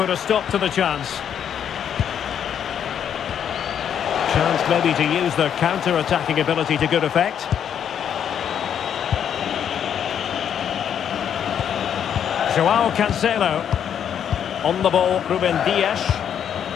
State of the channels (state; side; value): quieter; right; 8.8 dB